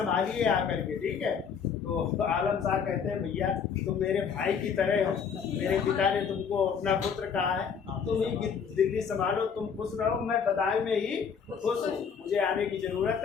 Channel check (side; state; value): right; quieter; 6.7 dB